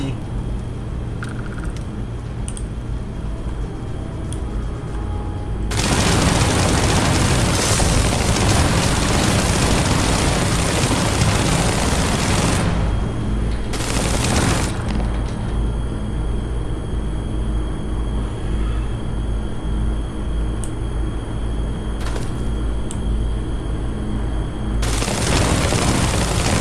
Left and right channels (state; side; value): identical; both; correlation 1.00